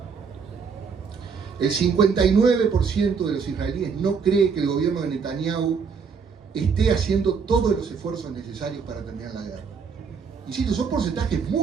El 59% de los israelíes no cree que el gobierno de Netanyahu esté haciendo todos los esfuerzos necesarios para terminar la guerra. Insisto, son porcentajes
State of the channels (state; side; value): quieter; left; 5.8 dB